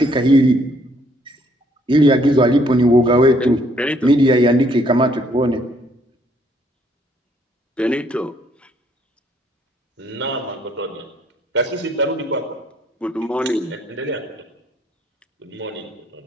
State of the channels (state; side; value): normal; both; correlation 0.67